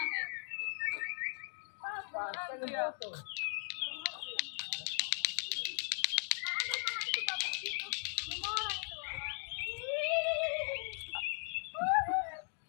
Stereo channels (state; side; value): silent; right; 52 dB below the other